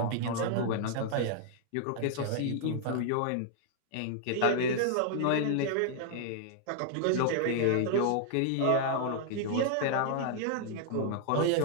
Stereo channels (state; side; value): different; both; correlation -0.01